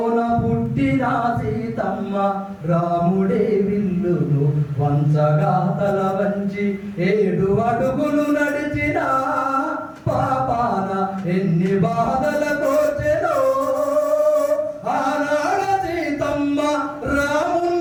పుట్టిన సీతమ్మ రాముడే విల్లును వంచగా తల వంచి 7 అడుగులు నడిచిన పాపాన ఎన్ని బాధల కోచెనో ఆనాడ సీతమ్మ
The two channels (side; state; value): both; identical; correlation 1.00